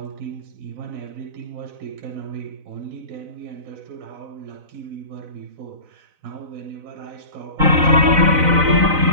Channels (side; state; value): left; late; 4.0 ms